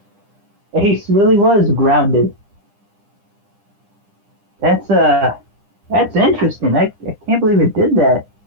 Ace really was grounded. That's interesting. I can't believe it did that.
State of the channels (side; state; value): left; late; 9.9 ms